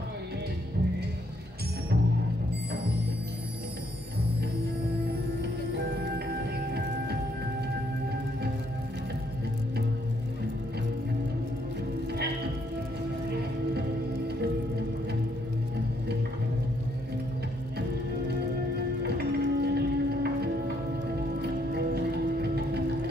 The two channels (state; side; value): normal; both; correlation 0.71